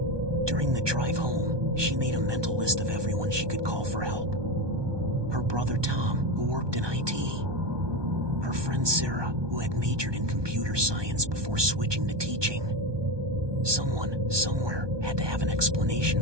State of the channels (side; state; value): left; late; 1.2 ms